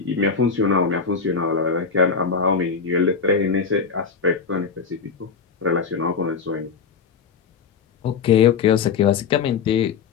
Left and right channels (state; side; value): quieter; right; 5.7 dB